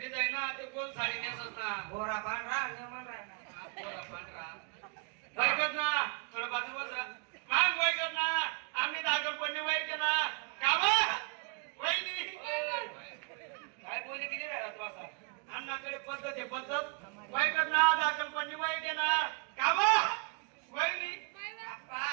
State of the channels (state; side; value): quieter; left; 37.9 dB